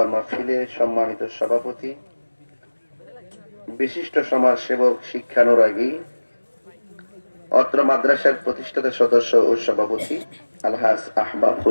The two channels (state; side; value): inverted; both; correlation -1.00